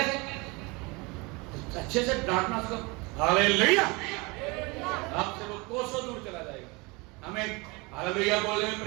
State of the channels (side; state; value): left; quieter; 26.6 dB